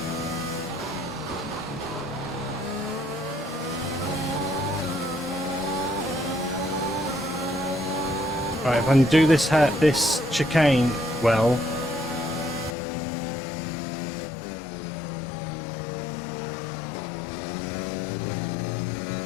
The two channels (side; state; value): right; drops out; at 12.8 s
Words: Right, if I can do this chicane well.